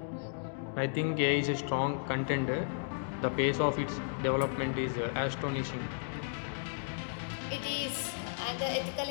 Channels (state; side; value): silent; right; digital silence